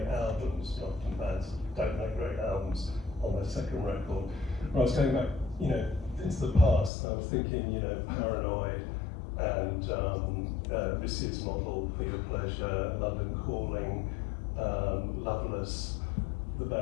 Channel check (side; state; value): right; drops out; at 6.9 s